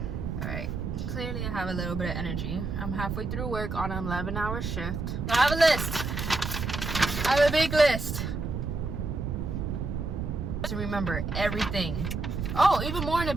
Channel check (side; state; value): right; noise; rumble, 3 dB below the sound